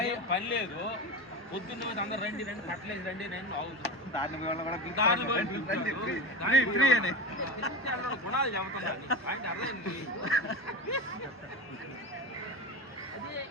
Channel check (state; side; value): normal; both; correlation 0.24